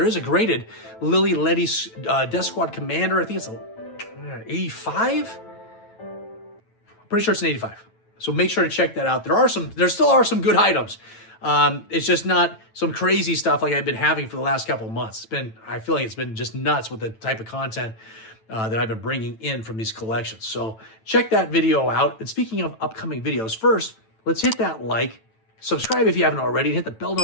is a graded Lily Letty Death Squad Commander. I think it's a 85. Pretty sure it's an 85. So make sure to check that out. There still are some good items. It's just not some crazy stuff like I've been having for the last couple of months. I feel like it's been just nuts with the type of content that I've been bringing in from these collections. So check that video out. And speaking of upcoming videos, first, let's hit that like, subscribe if you haven't already, and hit the bell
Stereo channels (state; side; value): late; right; 9.1 ms